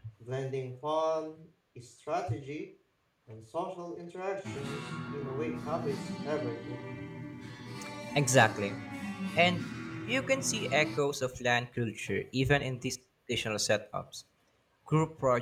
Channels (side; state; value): both; identical; correlation 1.00